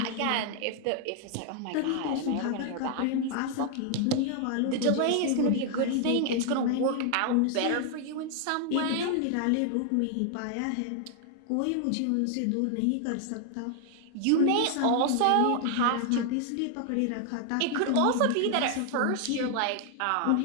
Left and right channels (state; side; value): different; both; correlation 0.00